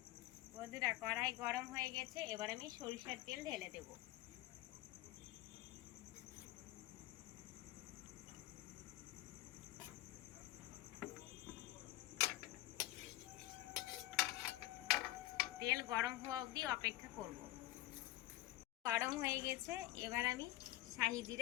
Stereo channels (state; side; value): quieter; right; 16.4 dB